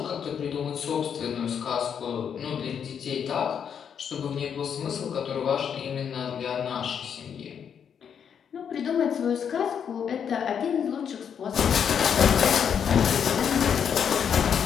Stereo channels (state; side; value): quieter; right; 7.7 dB